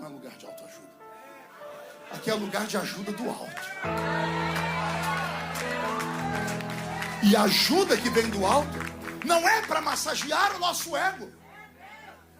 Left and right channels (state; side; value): identical; both; correlation 1.00